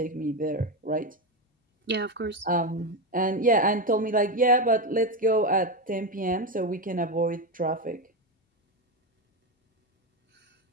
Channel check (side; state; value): both; normal; correlation 0.13